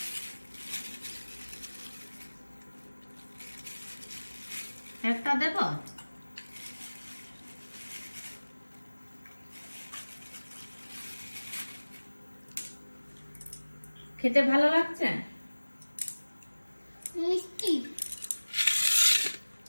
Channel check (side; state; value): both; inverted; correlation -1.00